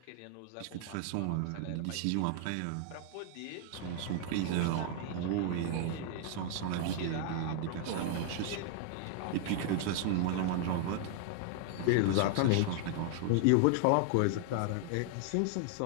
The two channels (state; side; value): different; both; correlation 0.00